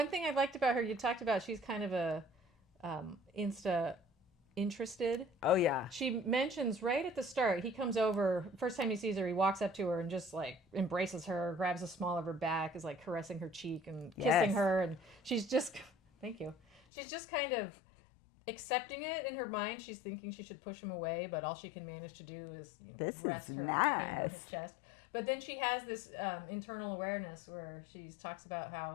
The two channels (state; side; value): drops out; right; at 16.8 s